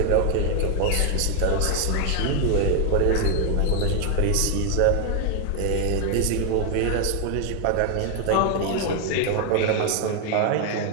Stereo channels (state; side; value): different; both; correlation 0.00